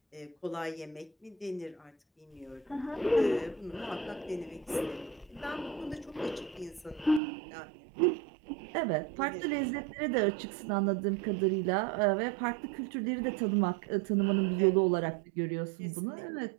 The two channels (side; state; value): left; drops out; at 7.2 s